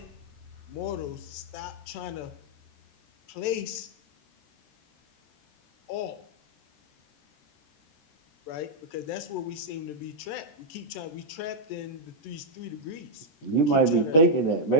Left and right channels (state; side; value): late; right; 13 ms